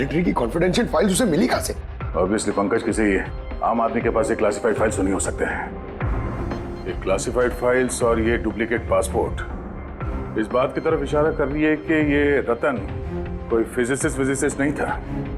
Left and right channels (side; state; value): both; identical; correlation 1.00